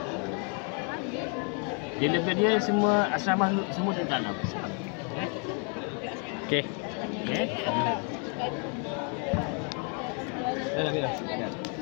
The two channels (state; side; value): quieter; right; 39.1 dB